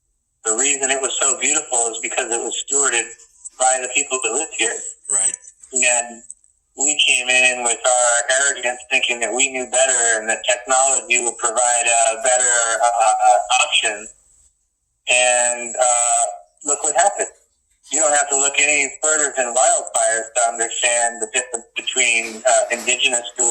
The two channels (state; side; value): identical; both; correlation 1.00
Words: The reason it was so beautiful is because it was stewarded by the people that lived here. Right. And we came in with our arrogance thinking that we knew better and that technology would provide a better option. And look what happened. You don't have to look any further than wildfires to understand the difference between indigenous